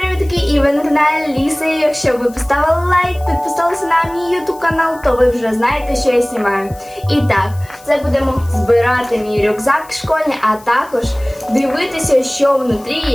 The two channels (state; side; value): noise; left; hiss, 23 dB below the sound